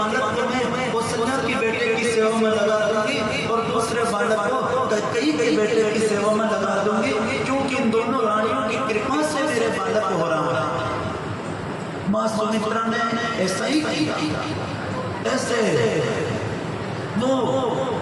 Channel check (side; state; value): both; identical; correlation 1.00